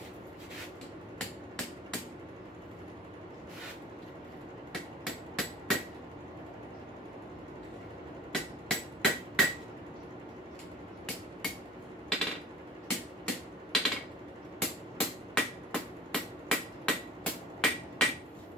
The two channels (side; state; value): both; normal; correlation 0.45